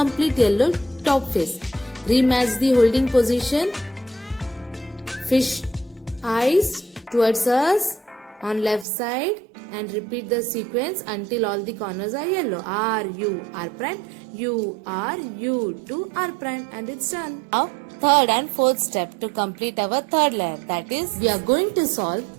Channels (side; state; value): left; drops out; at 8.8 s